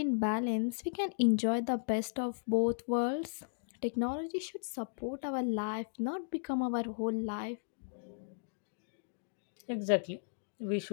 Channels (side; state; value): right; silent; digital silence